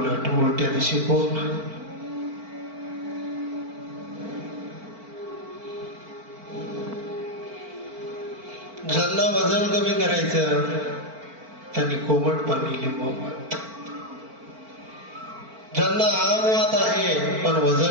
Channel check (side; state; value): left; late; 4.5 ms